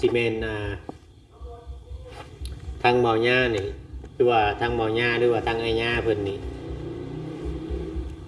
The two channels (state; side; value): identical; both; correlation 1.00